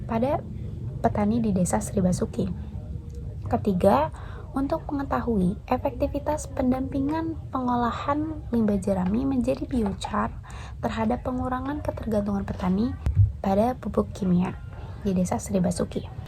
pada petani di Desa Sri Basuki. Ketiga, untuk mengetahui efektivitas pendampingan pengolahan limbah jerami menjadi biochar terhadap pengurangan ketergantungan petani pada pupuk kimia di Desa Sri Basuki.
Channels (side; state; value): both; identical; correlation 1.00